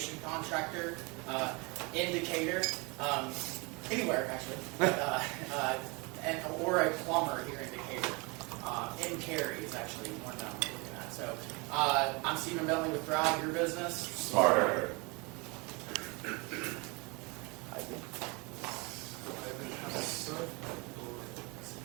contractor, indicator, anywhere actually, or a plumber here in Decatur. In Cary is actually one that I'm looking at. So I'm Stephen Bentley with Thrive, your business. Smarter.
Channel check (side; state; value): left; quieter; 28.5 dB